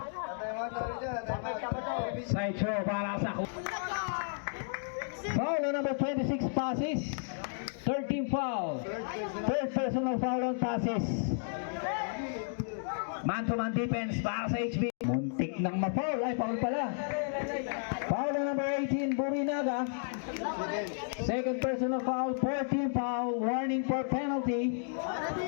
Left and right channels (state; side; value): silent; right; digital silence